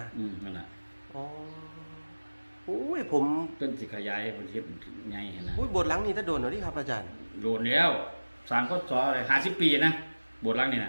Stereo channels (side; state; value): both; inverted; correlation -1.00